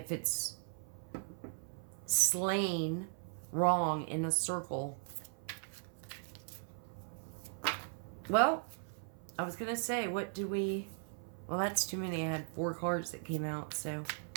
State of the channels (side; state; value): left; silent; 52 dB below the other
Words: it's slain wrong in a circle. Well, I was going to say, what do we... Well, that's too many. I had 4 cards that came out, so...